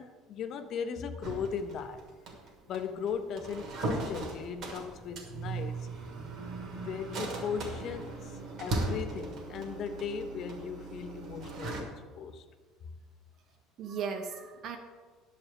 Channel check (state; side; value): normal; both; correlation 0.53